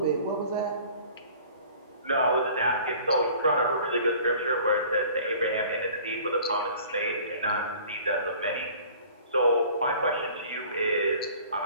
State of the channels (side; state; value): both; inverted; correlation -0.48